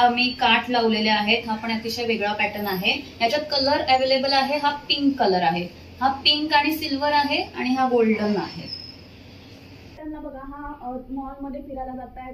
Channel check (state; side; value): identical; both; correlation 1.00